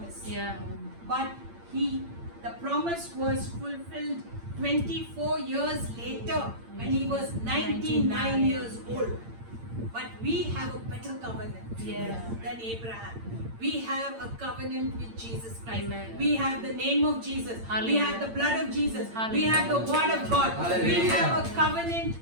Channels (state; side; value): late; left; 8.8 ms